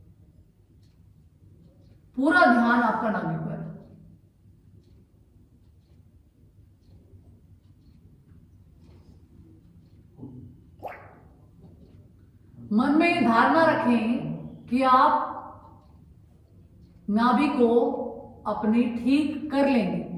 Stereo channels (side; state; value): both; identical; correlation 1.00